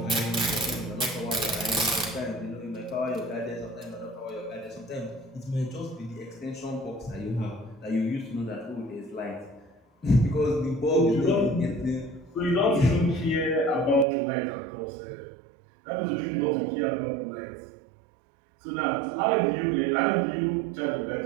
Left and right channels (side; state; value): left; drops out; at 14.1 s